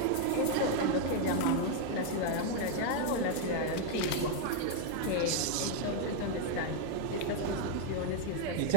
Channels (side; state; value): both; different; correlation 0.00